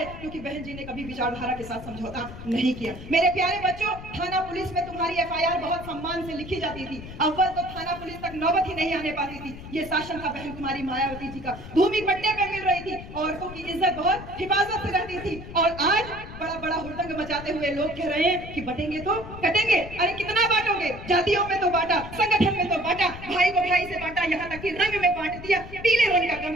क्योंकि बहन जी ने कभी विचारधारा के साथ समझौता नहीं किया। मेरे प्यारे बच्चों, थाना पुलिस में तुम्हारी एफआईआर बहुत सम्मान से लिखी जाती थी, अव्वल तो थाना पुलिस तक नौबत ही नहीं आने पाती थी। ये शासन था बहन कुमारी मायावती जी का, भूमि पट्टे पे मिल रही थी, औरतों की इज्जत बहुत हिफाजत से रहती थी। और आज बड़ा बड़ा हुड़दंग मचाते हुए लोग कह रहे हैं कि बटेंगे तो कटेंगे। अरे कितना बांटोगे? जातियों में तो बांटा, संगठन में तो बांटा, भाई को भाई से बांटा, यहाँ तक कि रंग में बांट दिया। पीले रंग का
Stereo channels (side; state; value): left; noise; rumble, 13 dB below the sound